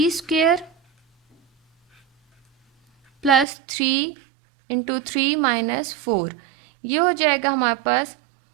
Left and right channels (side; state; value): left; drops out; at 3.5 s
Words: square plus 3 into 3 minus 4, ये हो जाएगा हमारे पास